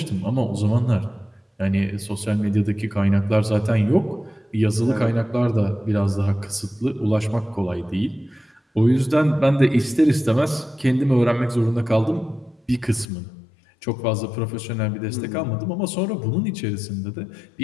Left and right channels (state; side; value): drops out; right; at 13.1 s